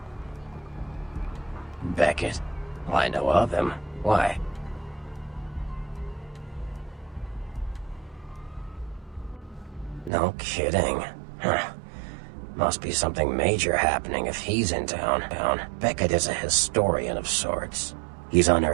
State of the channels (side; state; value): left; drops out; at 10.1 s